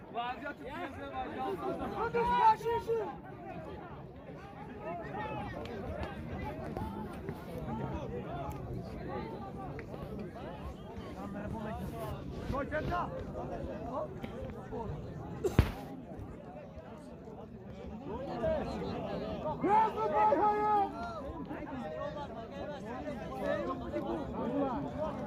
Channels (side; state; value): both; identical; correlation 1.00